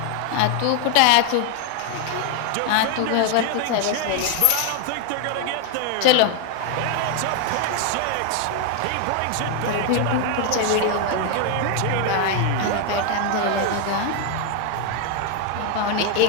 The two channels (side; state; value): both; different; correlation 0.00